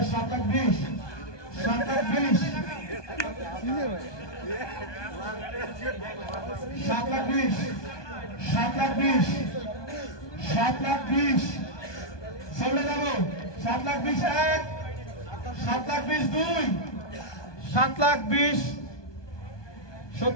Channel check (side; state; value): right; late; 1.2 ms